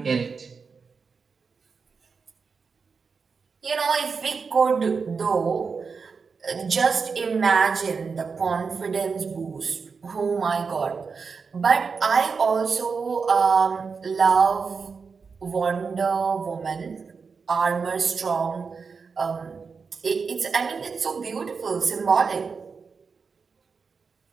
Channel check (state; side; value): quieter; left; 5.2 dB